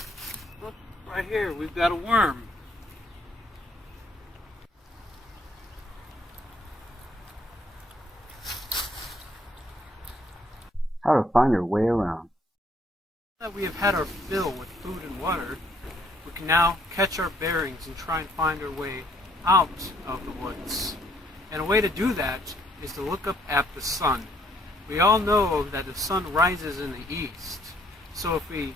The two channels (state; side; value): normal; both; correlation 0.66